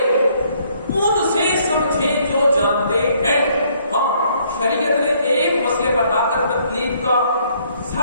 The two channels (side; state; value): both; inverted; correlation -0.66